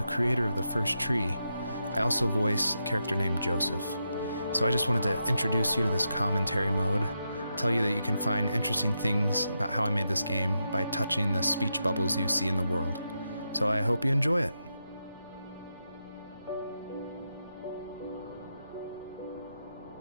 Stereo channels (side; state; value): both; inverted; correlation -0.85